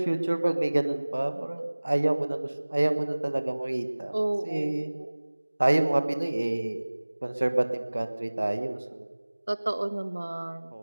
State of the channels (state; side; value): inverted; both; correlation -1.00